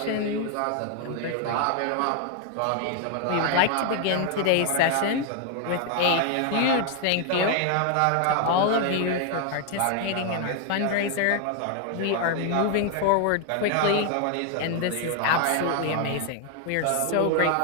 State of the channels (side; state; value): both; different; correlation 0.00